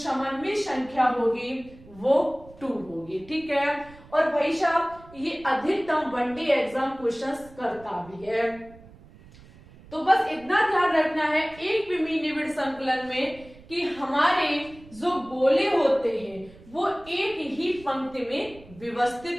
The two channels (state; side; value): noise; right; rumble, 22 dB below the sound